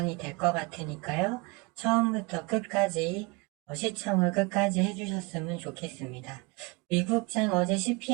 될 것 같으니까요. 처음부터 끝까지 시청을 끝까지 해주셨으면 좋겠습니다. 미국장 어제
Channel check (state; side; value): quieter; left; 26.9 dB